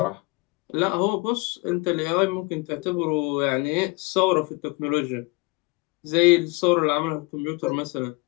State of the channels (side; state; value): right; quieter; 26.6 dB